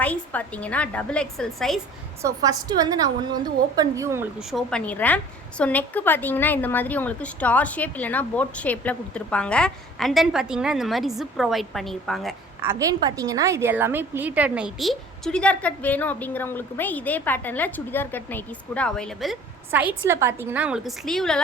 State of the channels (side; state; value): both; normal; correlation 0.48